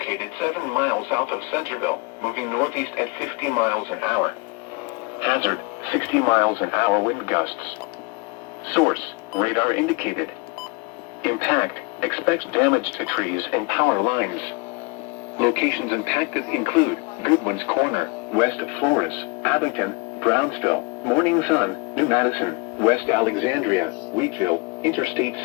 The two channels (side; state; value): right; quieter; 28.1 dB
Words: 7 miles south of Centerville, moving northeast at 50 miles an hour. Hazard, 60 miles an hour wind gusts. Source, radar indicated. Impact, expect damage to trees and power lines. Locations impacted include Goodwin's Corner, west of Flores, Abington, Brownsville, Morning Sun, New Madison, West Alexandria, Wheatville, Interstate